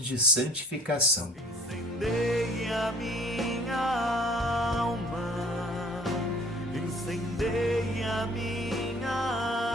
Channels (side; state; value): both; normal; correlation 0.53